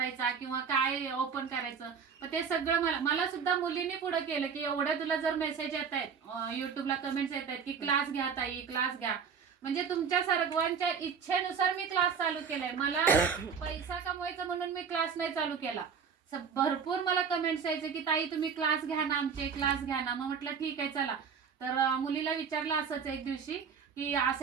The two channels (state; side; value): quieter; left; 6.5 dB